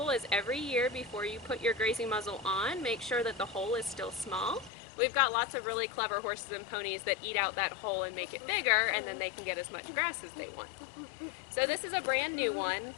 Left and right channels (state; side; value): drops out; right; at 4.7 s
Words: is every year before you put your grazing muzzle on, make sure that the hole is still small. We've got lots of really clever horses and ponies that eat out that hole and make it bigger, and then they can get as much grass as they want. So this is a brand new one